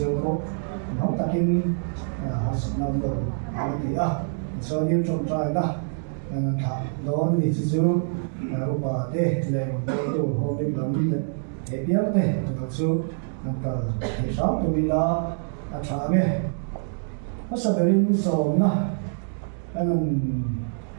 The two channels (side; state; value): left; silent; digital silence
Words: khổ nó ta kinh học năm đầu thì cho nên trong trai đó thằng đó thì chỉ chú bà tê lệ rồng cô tu hôm nay làm đi thế biếng tê thật sự nằm thì sáu tụi mình là trả mẹ nó sẽ bị sầu na anh